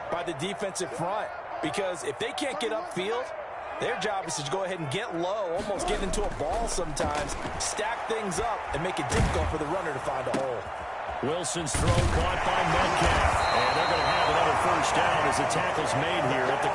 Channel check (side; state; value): both; identical; correlation 1.00